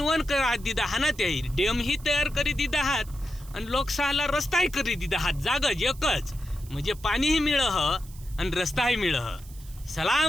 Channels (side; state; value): right; noise; hiss, 21 dB below the sound